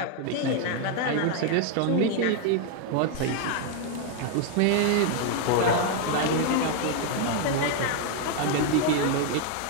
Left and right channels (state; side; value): different; both; correlation 0.01